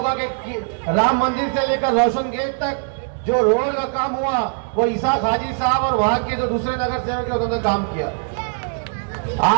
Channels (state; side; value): silent; left; 65 dB below the other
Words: कि राम मंदिर से लेकर रोशन गेट तक जो रोड का काम हुआ, वो इसाक हाजी साहब और वहां के जो दूसरे नगर सेवक थे उन्होंने काम किया।